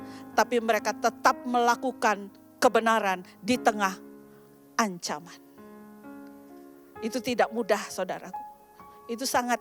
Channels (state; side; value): identical; both; correlation 1.00